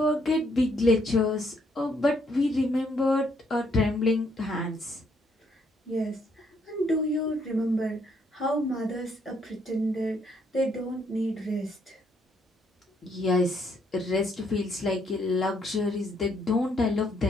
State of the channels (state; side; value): normal; both; correlation 0.71